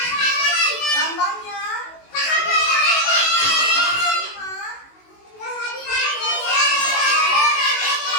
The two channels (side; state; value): right; late; 19 ms